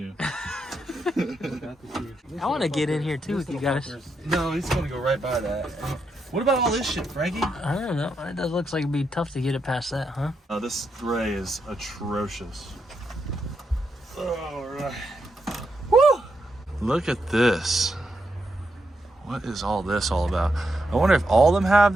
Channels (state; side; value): normal; both; correlation 0.82